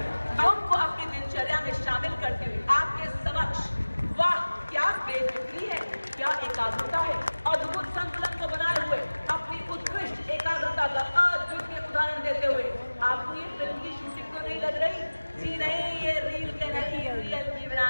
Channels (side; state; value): both; inverted; correlation -1.00